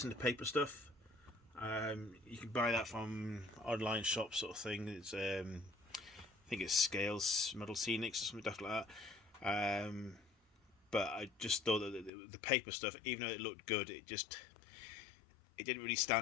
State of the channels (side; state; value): right; drops out; at 12.1 s